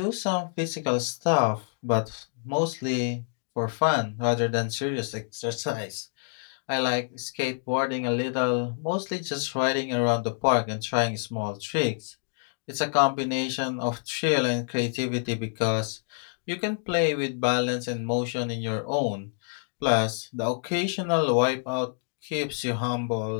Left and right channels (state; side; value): silent; right; digital silence